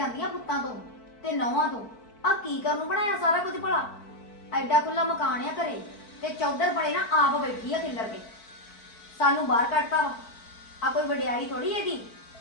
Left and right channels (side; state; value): right; late; 4.5 ms